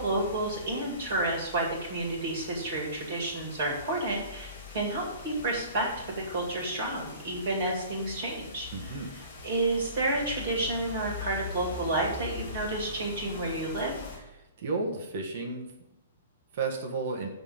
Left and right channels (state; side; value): inverted; both; correlation -0.43